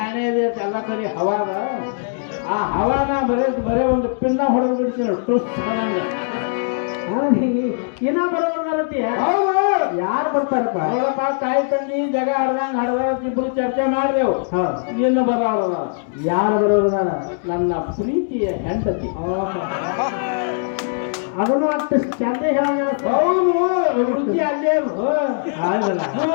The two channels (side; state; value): right; silent; digital silence